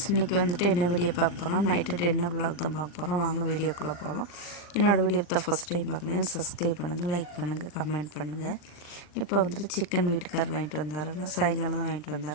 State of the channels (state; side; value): late; right; 39 ms